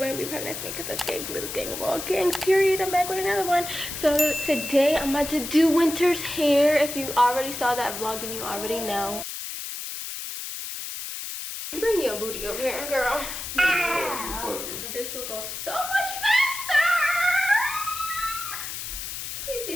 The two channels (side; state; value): left; noise; hiss, 7 dB below the sound